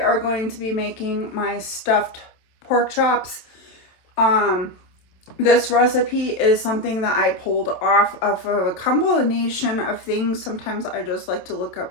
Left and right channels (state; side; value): late; right; 27 ms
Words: are going to be making my stuffed pork chops. This recipe is something that I pulled off of a combination of things. Sometimes I just like to look